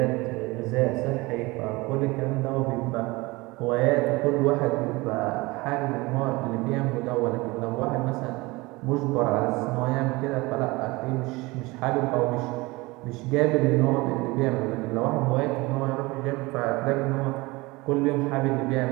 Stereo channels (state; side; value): quieter; left; 22.8 dB